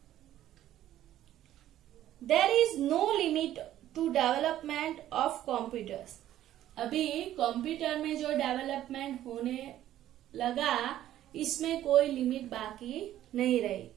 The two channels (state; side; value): quieter; left; 12.7 dB